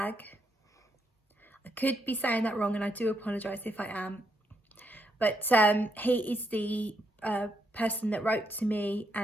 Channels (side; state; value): both; normal; correlation 0.78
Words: I could be saying that wrong and I do apologise if I am. But he is the person that wrote to me,